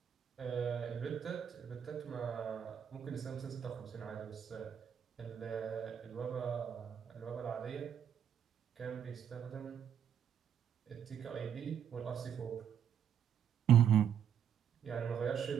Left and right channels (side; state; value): left; quieter; 8.7 dB